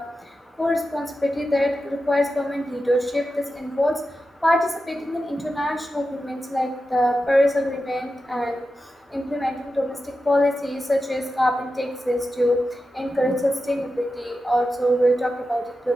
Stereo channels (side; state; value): both; normal; correlation 0.91